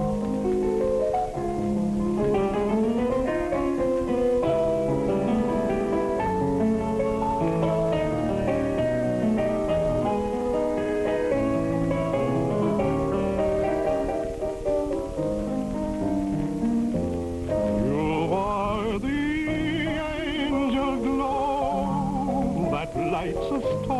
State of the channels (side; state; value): both; identical; correlation 1.00